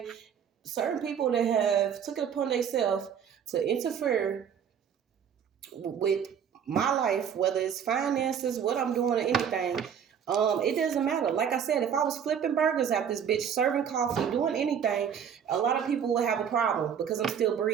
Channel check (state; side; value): quieter; left; 8.0 dB